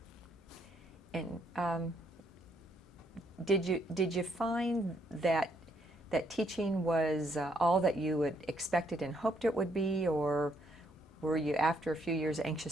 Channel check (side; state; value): both; normal; correlation 0.72